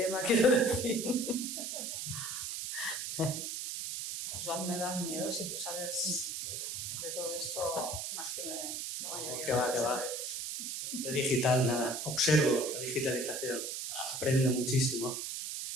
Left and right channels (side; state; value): right; noise; hiss, 4 dB below the sound